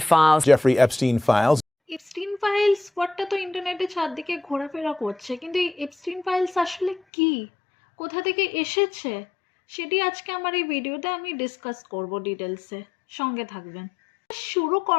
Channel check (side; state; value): right; drops out; at 7.0 s